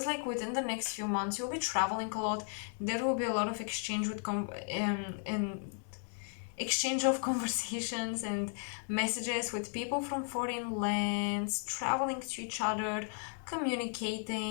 like within the next few months you'll be traveling a lot. There will be a lot of exchange with and exchange of conversations and messages with people from foreign lands, traveling to each other,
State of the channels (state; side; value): silent; right; 54 dB below the other